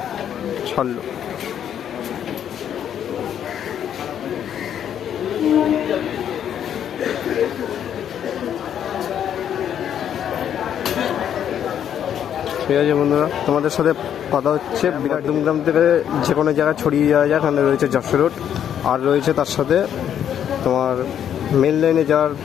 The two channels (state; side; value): quieter; right; 9.4 dB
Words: ছাড়লো। ঠিক আছে বন্ধুরা, তোমাদের সাথে কথা হচ্ছে মধ্যমগ্রাম থেকে যে কোনো জায়গায় ছড়িয়ে যাওয়া যায়। এখানে রয়েছে যশোর রোড, আর রয়েছে তার সাথে তোমার মেন লাইনে যাওয়ার